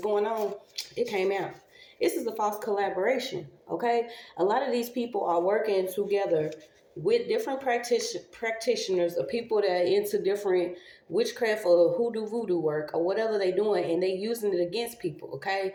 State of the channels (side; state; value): both; identical; correlation 1.00